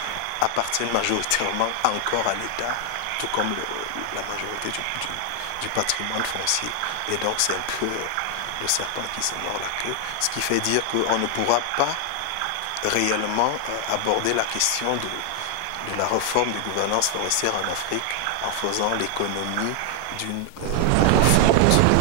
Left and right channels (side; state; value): both; different; correlation 0.00